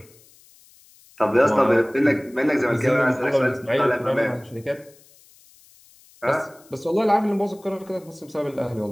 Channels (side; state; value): left; noise; hiss, 27 dB below the sound